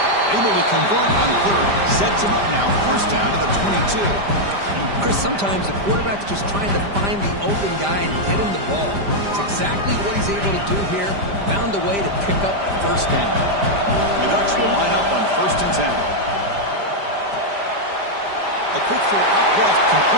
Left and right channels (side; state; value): left; late; 5.0 ms